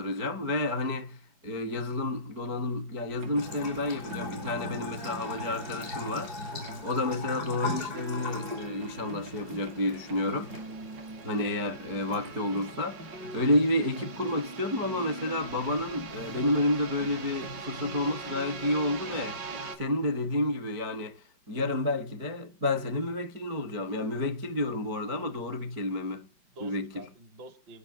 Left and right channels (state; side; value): late; left; 5.1 ms